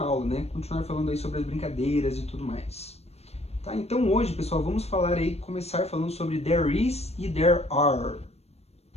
aula, né? Continuar falando aí sobre as brincadeiras e tudo mais. Tá? Então hoje, pessoal, vamos falar aí, começar falando sobre there is e there are,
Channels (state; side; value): late; right; 0.30 ms